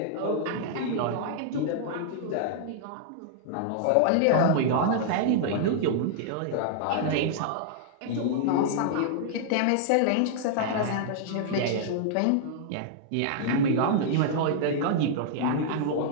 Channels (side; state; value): both; different; correlation -0.01